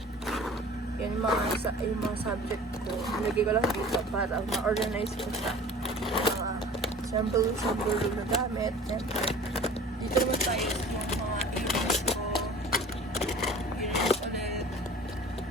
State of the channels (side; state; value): both; normal; correlation 0.44